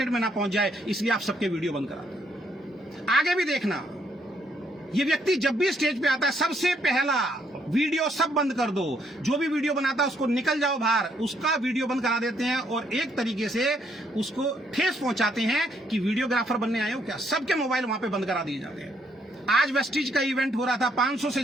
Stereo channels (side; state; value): both; normal; correlation 0.71